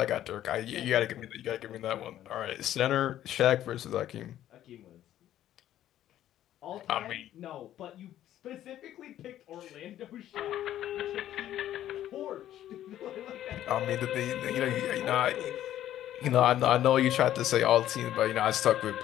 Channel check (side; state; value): right; quieter; 12.3 dB